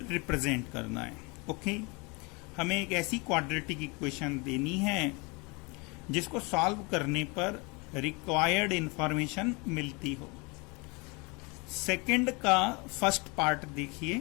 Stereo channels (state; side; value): quieter; right; 28.8 dB